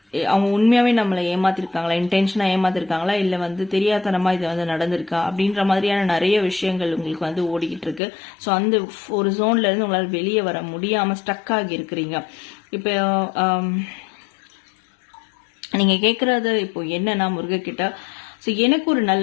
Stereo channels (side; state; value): right; drops out; at 8.0 s